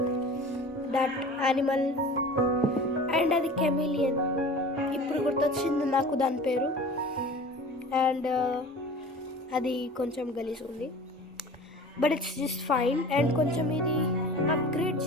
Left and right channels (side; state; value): both; normal; correlation 0.40